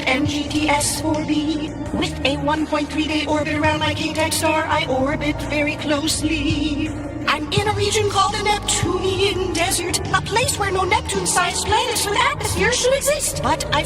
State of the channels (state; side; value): identical; both; correlation 1.00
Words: NGTS-4b. With a 1.3-day orbit around my king-type star, I orbit very closely. I'm in a region called the Neptunian Desert, a place where no Neptune-sized planets with atmosphere should exist. But